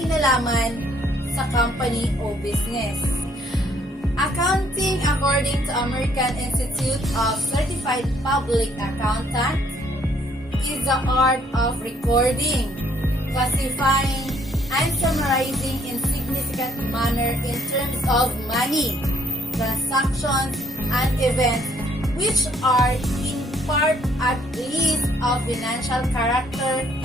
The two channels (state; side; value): normal; both; correlation 0.65